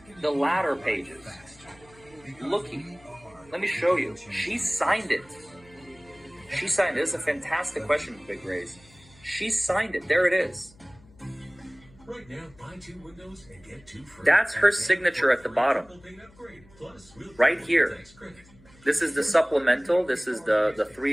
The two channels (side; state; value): left; noise; hum, 26 dB below the sound